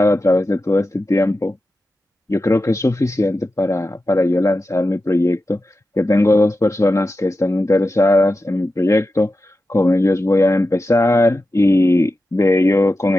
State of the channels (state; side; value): normal; both; correlation 0.91